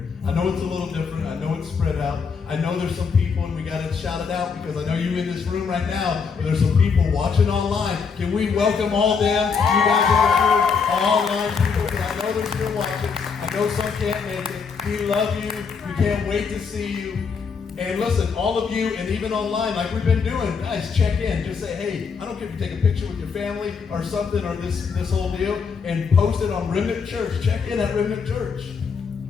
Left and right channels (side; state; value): right; quieter; 5.7 dB